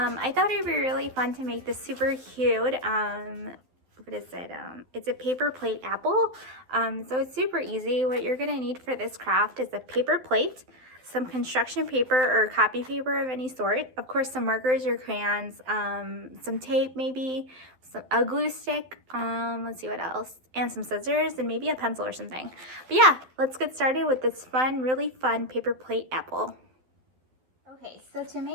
thought it'd be really fun to make this super cute. What is it? It's a paper plate apple. So it's super easy. What you're gonna need for this craft is a paper plate, some construction paper or copy paper of any sort, of course some markers or crayons, some tape maybe, a glue stick, let's see what else, and some scissors and maybe a pencil or something. But yeah, let's get started with this fun, really fun paper plate apple. Okay, so to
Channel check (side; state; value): left; late; 12 ms